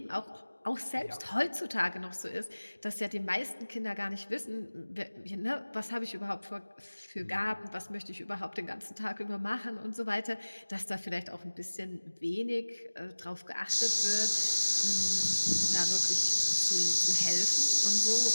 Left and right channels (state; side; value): inverted; both; correlation -1.00